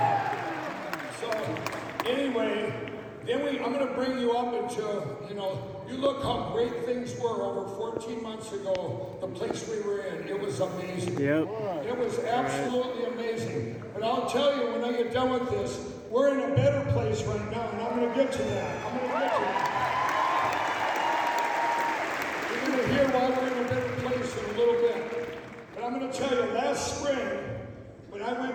So anyway, I'm going to bring you up into, you look how great things were over 14 months ago, the place we were in. It was amazing. Yep. It was absolutely amazing. But I'll tell you, when I get done with this, we're in a better place right now, and I'm going to get to that. You're going to hear why we're in a better place in a little bit. But I'm going to tell you, last spring, when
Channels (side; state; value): both; identical; correlation 1.00